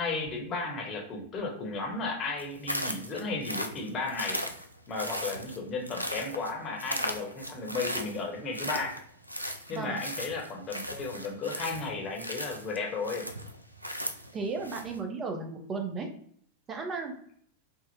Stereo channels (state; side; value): normal; both; correlation -0.05